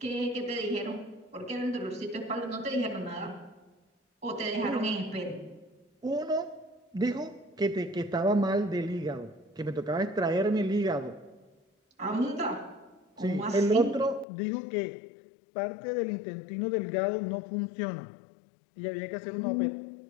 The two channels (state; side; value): drops out; right; at 14.2 s